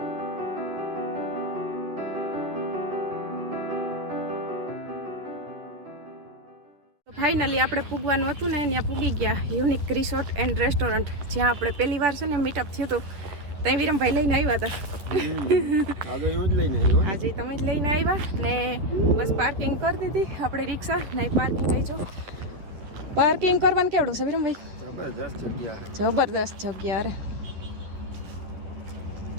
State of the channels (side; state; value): left; late; 10 ms